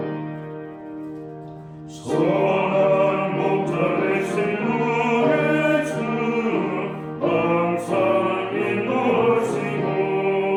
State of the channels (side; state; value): both; identical; correlation 1.00